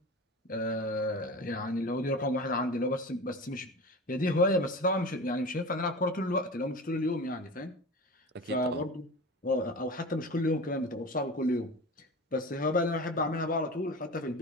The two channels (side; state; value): both; normal; correlation 0.32